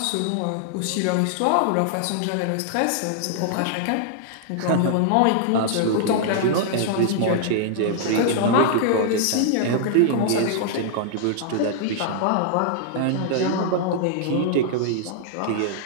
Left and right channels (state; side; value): different; both; correlation -0.01